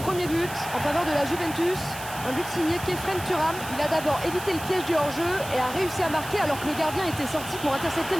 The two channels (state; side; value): noise; right; hiss, 12 dB below the sound